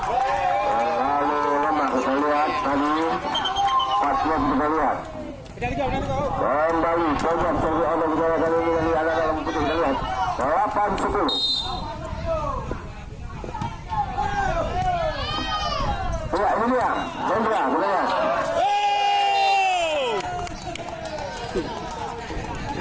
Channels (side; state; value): both; identical; correlation 1.00